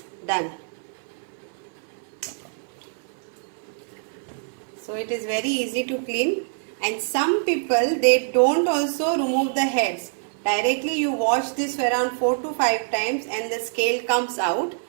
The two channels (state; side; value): silent; left; 59 dB below the other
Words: done. So it is very easy to clean, and some people they don't also remove the heads. Directly you wash this for around 4 to 5 times and the scale comes out,